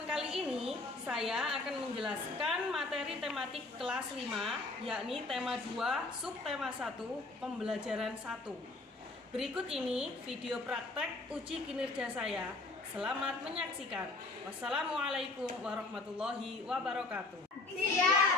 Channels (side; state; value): right; quieter; 3.2 dB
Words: kali ini, saya akan menjelaskan materi tematik kelas 5, yakni tema 2, subtema 1, pembelajaran 1. Berikut ini video praktek uji kinerja saya. Selamat menyaksikan. Wassalamualaikum warahmatullahi wabarakatuh.